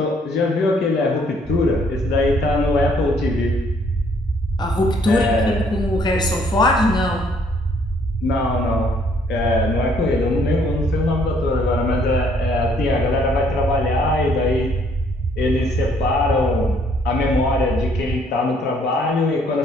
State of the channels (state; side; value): normal; both; correlation 0.65